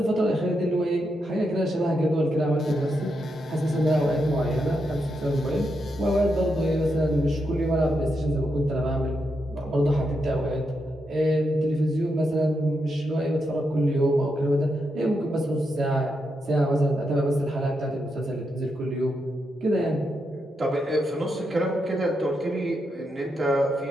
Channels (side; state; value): both; normal; correlation 0.83